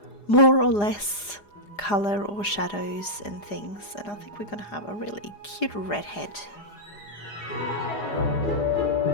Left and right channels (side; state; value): right; late; 4.9 ms